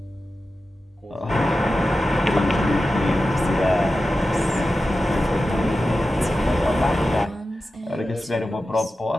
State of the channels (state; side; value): normal; both; correlation 0.93